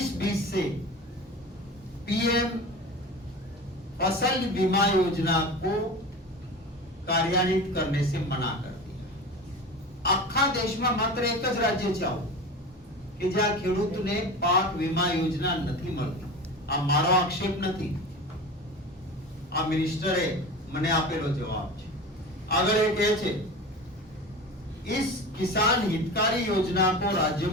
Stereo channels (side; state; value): both; normal; correlation 0.32